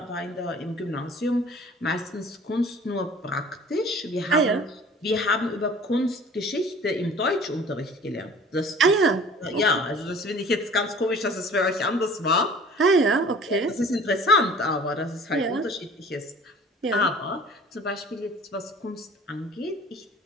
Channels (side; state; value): both; normal; correlation 0.47